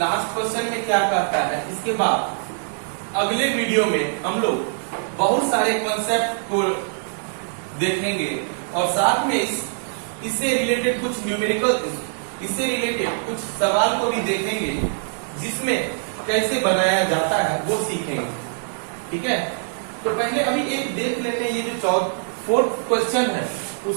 क्वेश्चन में क्या कहता है? इसके बाद अगले वीडियो में हम लोग बहुत सारे कॉन्सेप्ट को देखेंगे और साथ में इससे रिलेटेड कुछ न्यूमेरिकल, इससे रिलेटेड कुछ सवाल को भी देखेंगे जिसमें कैसे बनाया जाता है वो सीखेंगे। ठीक है, तो पहले अभी एक देख लेते हैं, ये जो फोर्थ क्वेश्चन है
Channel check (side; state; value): left; silent; digital silence